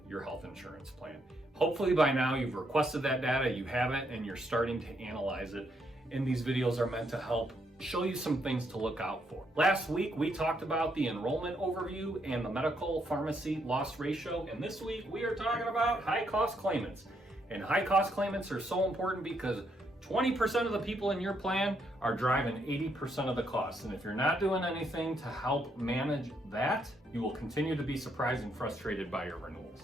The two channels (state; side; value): normal; both; correlation 0.75